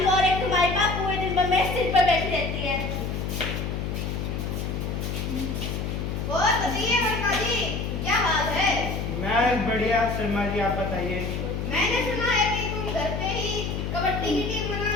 और एक तुम्हारी माँ पूरे दिन में मेरे सिर पर बैठी रहती है। और बताइए वर्मा जी, क्या हाल है? मैं बढ़िया शर्मा जी, आप बताइए। मैंने सुना है कि तुम घर पे ही कबड्डी की टीम बना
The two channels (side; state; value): left; noise; hum, 3 dB below the sound